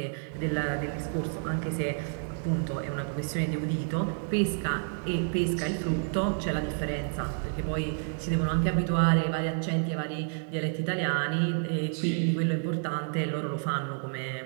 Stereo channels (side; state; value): left; silent; 58 dB below the other